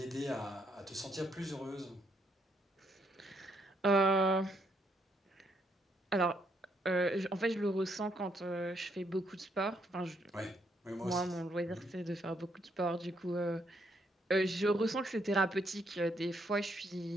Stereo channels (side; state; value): both; normal; correlation 0.74